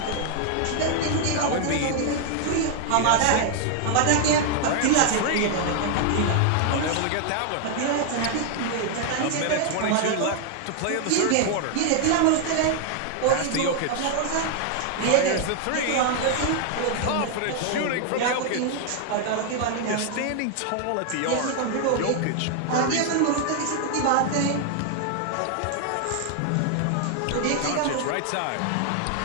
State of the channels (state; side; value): different; both; correlation 0.00